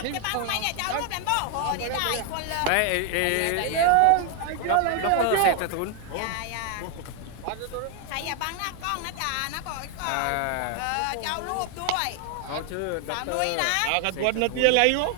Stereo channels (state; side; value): different; both; correlation 0.00